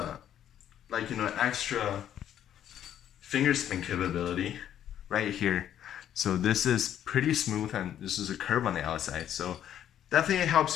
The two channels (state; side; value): quieter; right; 10.5 dB